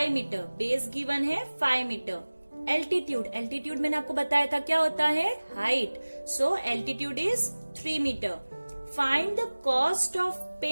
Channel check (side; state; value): both; inverted; correlation -1.00